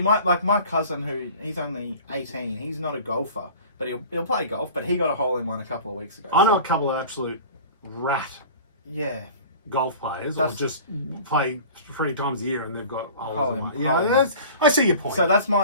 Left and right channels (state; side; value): inverted; both; correlation -0.41